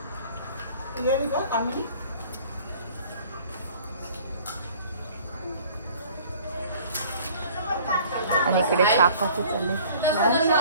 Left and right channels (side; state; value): both; inverted; correlation -0.52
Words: आणि इकडे चहा कॉफी चालले.